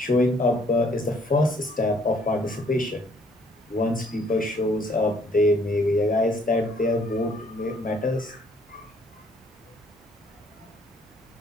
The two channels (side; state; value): both; normal; correlation 0.63